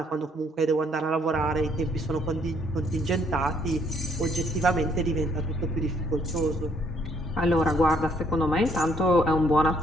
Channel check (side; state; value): both; normal; correlation 0.66